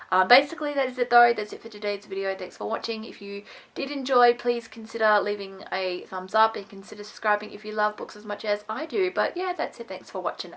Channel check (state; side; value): identical; both; correlation 1.00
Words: Basically, that is it though. That's it for today's video. Thanks for watching. If you did enjoy, please consider leaving a thumbs up and consider subscribing if you love books as much as I do. But yeah, that's it. Thanks for watching.